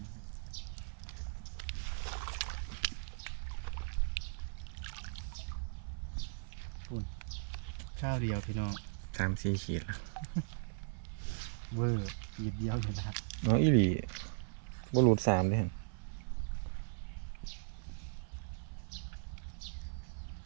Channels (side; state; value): left; silent; 52 dB below the other